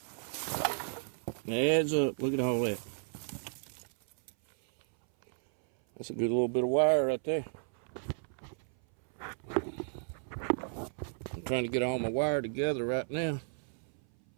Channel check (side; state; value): left; silent; 55 dB below the other